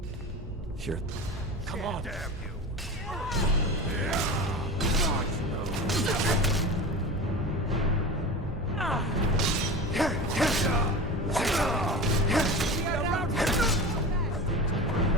Here. Come on. Damn you!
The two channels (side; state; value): both; normal; correlation 0.30